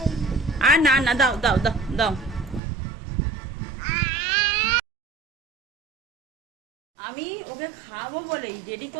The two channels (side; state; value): left; drops out; at 2.6 s